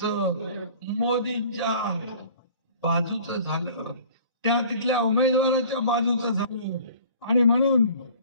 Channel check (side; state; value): both; inverted; correlation -0.48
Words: मोदींच्या बाजूचं झालं, तिथल्या उमेदवाराच्या बाजूचं झालं आणि म्हणून